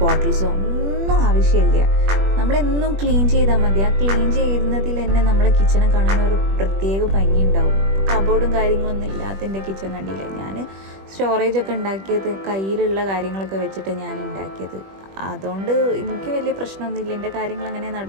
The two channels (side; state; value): left; late; 21 ms